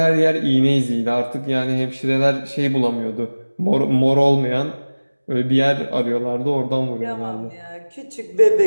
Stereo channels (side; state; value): both; inverted; correlation -1.00